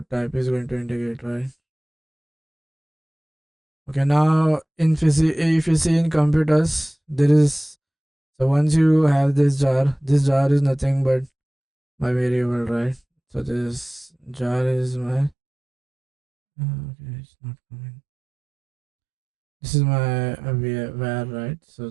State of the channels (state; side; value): drops out; left; at 15.4 s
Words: type is going to indicate, right? Okay, now if you see in computers, there is, so once you have this jar is nothing but my variable, right? So this jar is my okay, it's not coming. This is my var, right? So